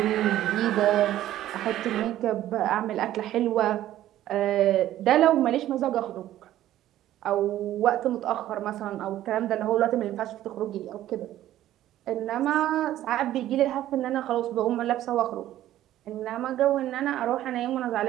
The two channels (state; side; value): quieter; left; 13.3 dB